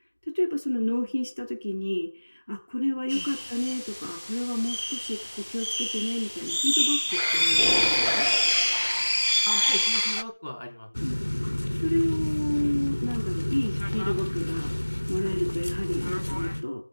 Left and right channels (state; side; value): inverted; both; correlation -1.00